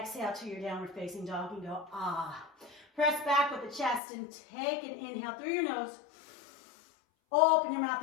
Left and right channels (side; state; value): right; drops out; at 4.0 s